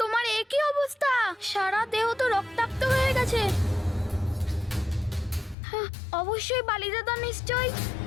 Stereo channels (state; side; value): drops out; right; at 5.6 s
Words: তোমার একই অবস্থা, সারা দেহ তো রক্তাক্ত হয়ে গেছে। হ্যাঁ, অবশ্যই বালি দাদা নিশ্চয়।